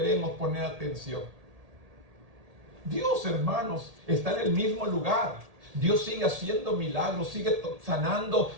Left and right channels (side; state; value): left; late; 1.8 ms